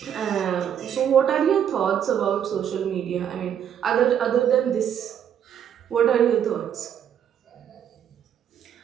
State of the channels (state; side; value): quieter; left; 9.1 dB